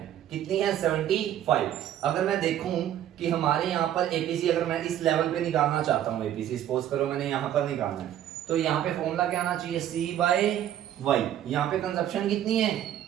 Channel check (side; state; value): left; quieter; 11.3 dB